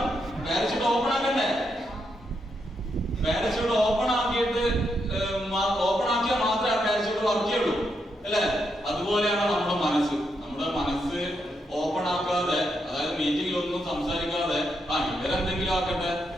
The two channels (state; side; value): normal; both; correlation 0.81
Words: പാരച്യൂട്ട് ഓപ്പൺ ആക്കണ്ടേ? പാരച്യൂട്ട് ഓപ്പൺ ആക്കിയിട്ട് ഓപ്പൺ ആക്കിയാൽ മാത്രമേ ആ പാരച്യൂട്ട് വർക്ക് ചെയ്യുള്ളൂ, അല്ലെ? അതുപോലെയാണ് നമ്മുടെ മനസ്സ്. നമ്മുടെ മനസ്സ് ഓപ്പൺ ആക്കാതെ, അതായത് മീറ്റിംഗിലൊന്നും സംസാരിക്കാതെ ഇവരെന്തെങ്കിലും ആക്കട്ടെ,